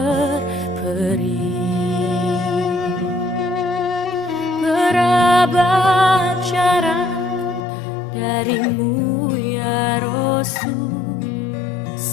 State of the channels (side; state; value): right; drops out; at 7.6 s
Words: Berabad jarak darimu ya Rasul,